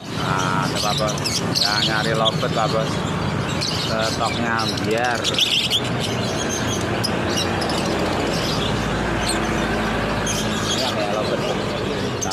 Nah, ada Pak Bos. Yang nyari lobet Pak Bos. Stoknya biar. Ya kayak lobet.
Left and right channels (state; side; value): identical; both; correlation 1.00